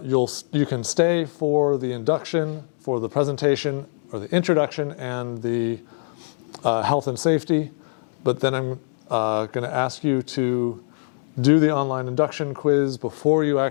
can stay for the induction, for the presentation, or the introduction and the health and safety, but then I'm going to ask you to do the online induction quiz before you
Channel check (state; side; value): silent; right; digital silence